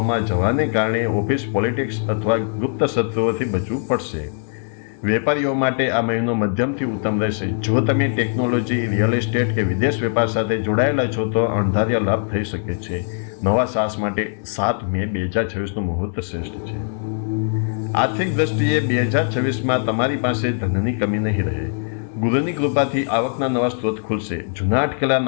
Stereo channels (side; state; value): right; silent; 65 dB below the other